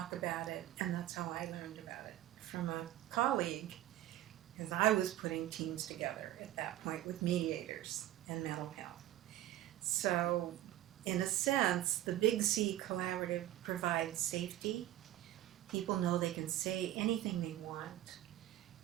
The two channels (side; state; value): left; quieter; 13.8 dB